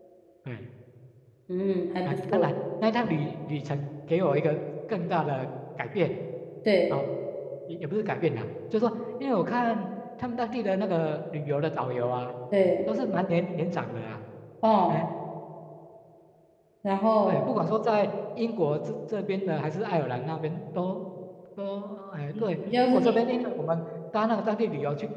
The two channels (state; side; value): identical; both; correlation 1.00